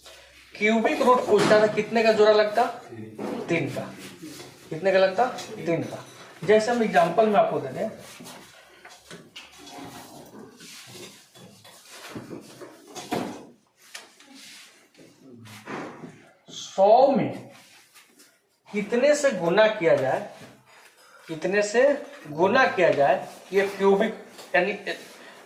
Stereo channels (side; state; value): both; identical; correlation 1.00